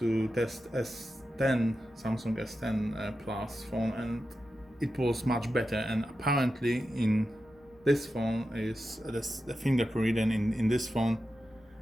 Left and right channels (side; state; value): both; normal; correlation 0.90